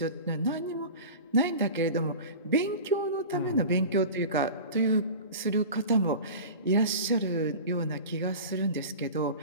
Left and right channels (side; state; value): both; inverted; correlation -0.34